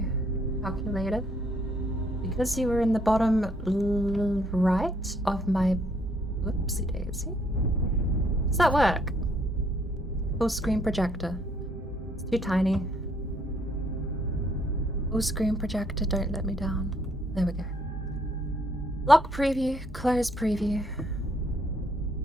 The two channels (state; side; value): normal; both; correlation 0.68